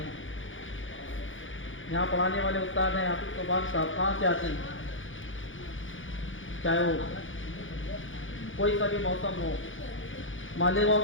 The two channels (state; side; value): late; right; 0.57 ms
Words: یہاں پڑھانے والے استاد ہیں حافظ صوبان صاحب، کہاں سے آتے ہیں؟ چاہے وہ کوئی سا بھی موسم ہو،